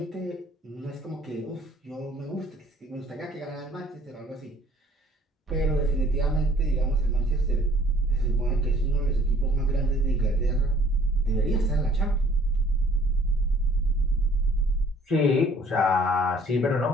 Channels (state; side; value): normal; both; correlation 0.56